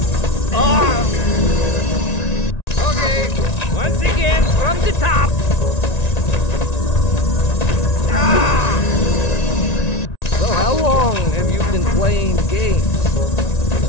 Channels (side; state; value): right; late; 1.9 ms